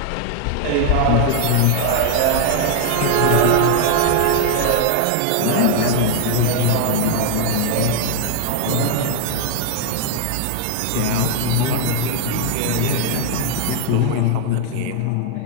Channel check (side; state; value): both; different; correlation 0.00